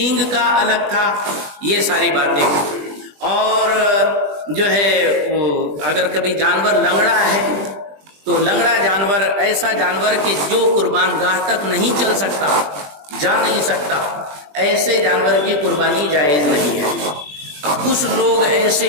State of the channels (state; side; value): late; left; 20 ms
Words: کا الگ تھا، یہ ساری باتیں. اور جو ہے وہ اگر کبھی جانور لنگڑا ہے تو لنگڑا جانور ایسا جانور کہ جو قربان گاہ تک نہیں چل سکتا، جا نہیں سکتا، ایسے جانور کی قربانی جائز نہیں ہے۔ کچھ لوگ ایسے